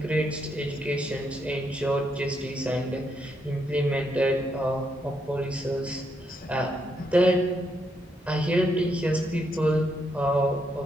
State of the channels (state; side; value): normal; both; correlation 0.78